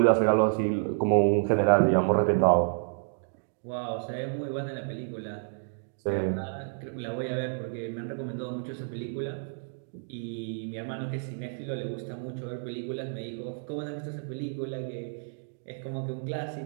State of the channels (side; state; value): left; silent; digital silence